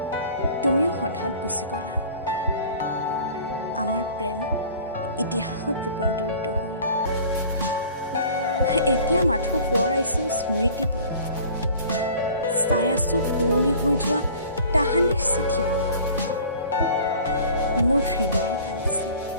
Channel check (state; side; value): inverted; both; correlation -0.46